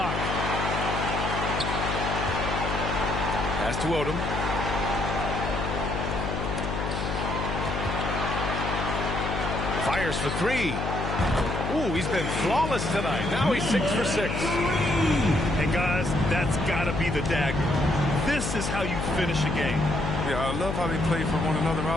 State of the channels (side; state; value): left; noise; hum, 3 dB below the sound